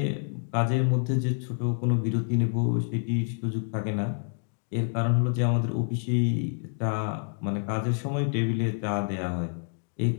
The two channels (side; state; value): right; silent; digital silence